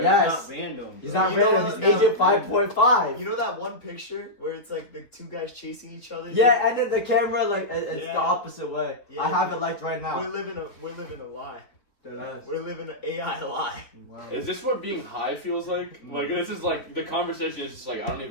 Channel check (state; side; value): late; right; 3.8 ms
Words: It's Yes. not random. He's bro. not You know random. what? He's No. Agent 5.5. You know that one picture where it's like the two guys chasing each other? Yeah, and then the camera it's Yeah. the opposite way. Yeah. I have it liked right We're now. living a lie. Deadass. We're living an AI lie. Wow. Is this what being high feels like? Like, this is like, the conversation is just like, I don't